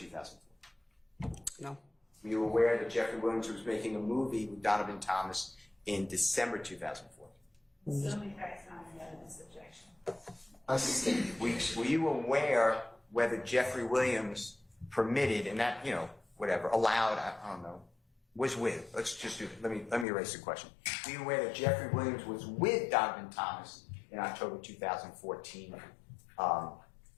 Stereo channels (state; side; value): drops out; right; at 20.1 s